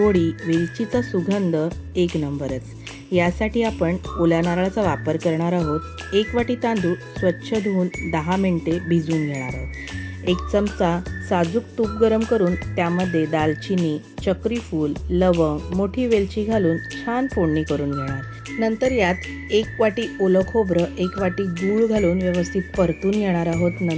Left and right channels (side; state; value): both; identical; correlation 1.00